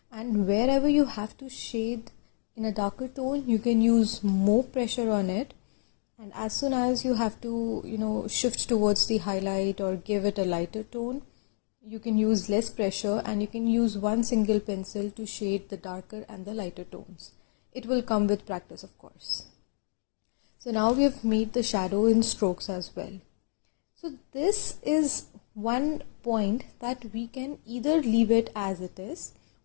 and wherever you have to shade in a darker tone, you can use more pressure on it. And as soon as you have to, shift towards the highlight or give it a lighter tone, you can use less pressure and you can use one single pencil to shade the darker and the lighter tones. It will come with practice, of course. So now we have made the shadow in strokes as well. So this is one point that we can either leave it as it is,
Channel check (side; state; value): right; silent; digital silence